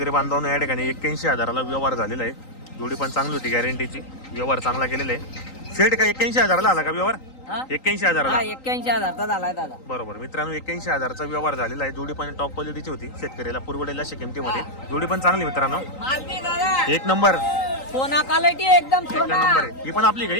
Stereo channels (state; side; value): late; right; 3.9 ms